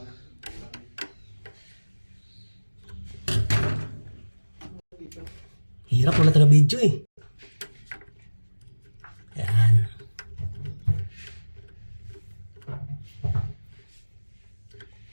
Hirap, wala taga video eh. Ayan.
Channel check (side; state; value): both; inverted; correlation -1.00